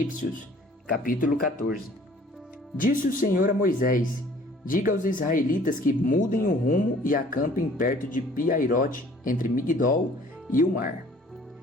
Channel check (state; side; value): normal; both; correlation 0.54